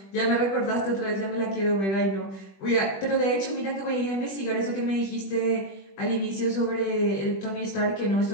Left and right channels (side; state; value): right; late; 21 ms